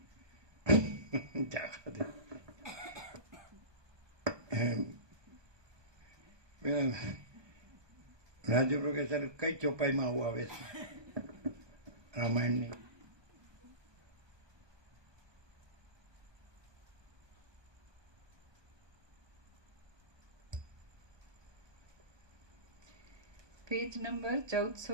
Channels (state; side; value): late; left; 1.2 ms